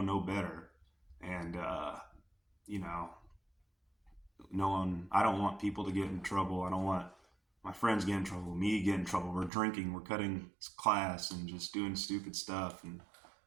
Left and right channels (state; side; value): drops out; left; at 9.5 s